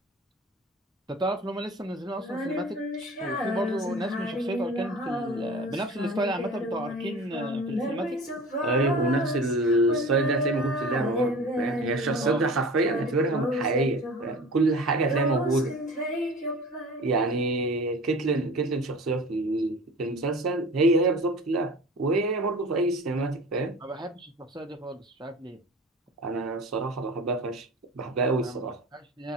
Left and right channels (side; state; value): both; normal; correlation 0.38